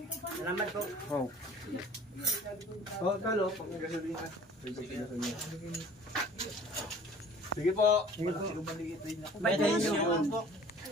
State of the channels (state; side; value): normal; both; correlation 0.49